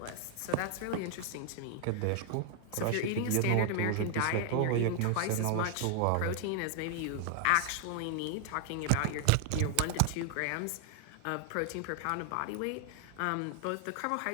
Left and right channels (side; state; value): both; different; correlation 0.00